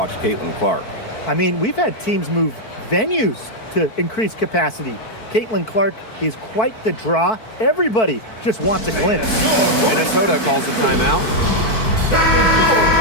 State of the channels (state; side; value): late; right; 4.5 ms